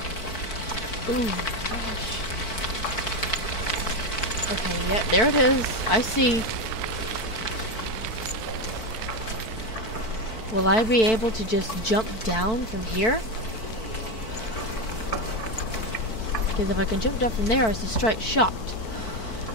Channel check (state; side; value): late; right; 4.5 ms